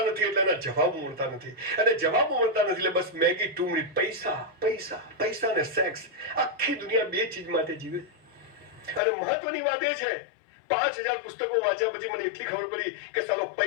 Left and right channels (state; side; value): drops out; right; at 9.0 s